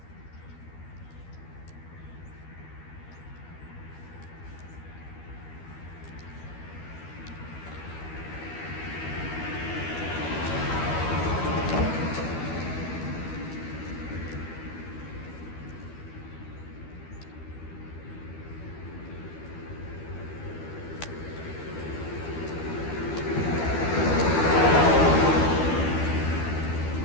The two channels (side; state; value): right; late; 12 ms